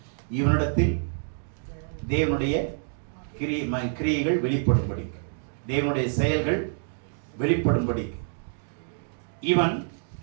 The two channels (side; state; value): left; silent; digital silence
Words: இவனிடத்தில் தேவனுடைய கிரியைகள் வெளிப்படும்படி, தேவனுடைய செயல்கள் வெளிப்படும்படி இவன்